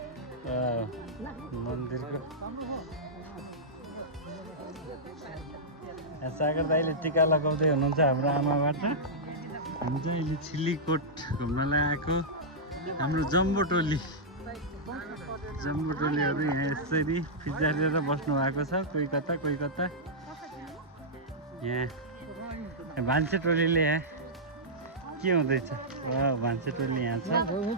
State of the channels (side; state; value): both; normal; correlation -0.10